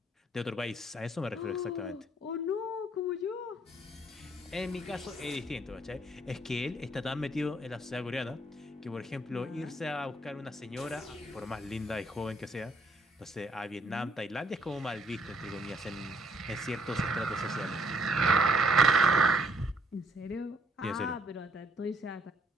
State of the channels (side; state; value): both; normal; correlation 0.67